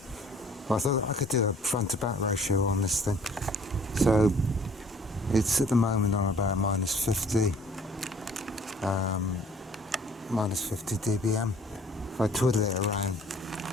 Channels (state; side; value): normal; both; correlation 0.55